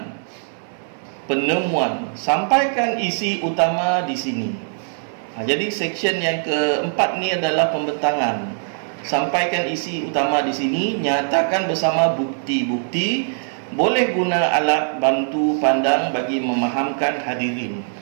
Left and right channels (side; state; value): left; silent; 58 dB below the other